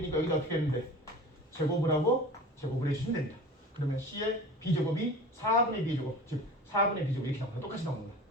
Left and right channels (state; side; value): normal; both; correlation 0.38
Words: 여기다 어떻게 했는데 제곱을 하고 제곱을 해주시면 됩니다. 그러면 C의 B제곱이 4분의 B제곱, 즉 4분의 B제곱 이렇게 나옵니다. 똑같이 나옵니다.